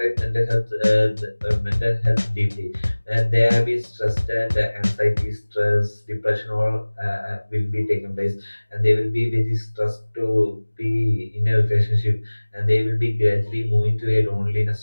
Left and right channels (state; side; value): inverted; both; correlation -1.00